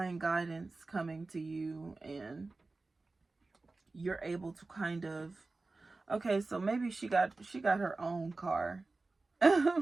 guidance coming to you, and you're able to kind of, okay, so maybe she got her own car.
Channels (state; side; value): quieter; left; 3.5 dB